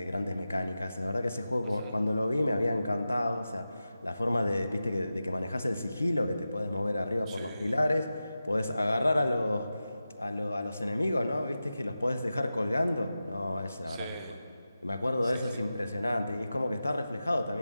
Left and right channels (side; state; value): both; inverted; correlation -0.93